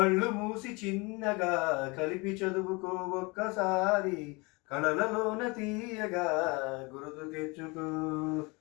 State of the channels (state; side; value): quieter; right; 27.1 dB